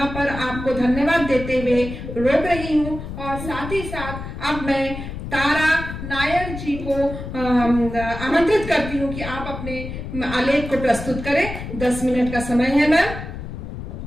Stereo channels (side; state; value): left; noise; rumble, 8 dB below the sound